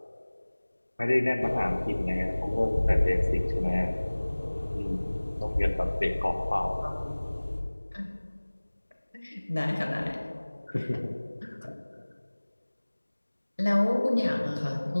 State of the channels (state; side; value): inverted; both; correlation -1.00